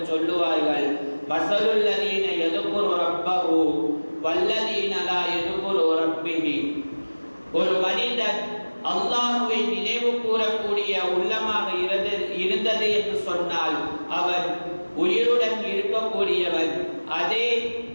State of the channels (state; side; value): inverted; both; correlation -1.00